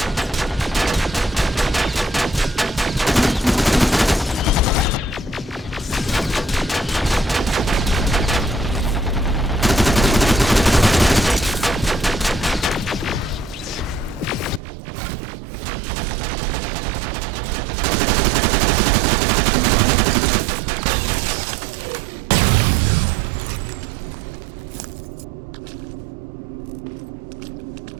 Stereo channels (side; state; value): left; drops out; at 14.6 s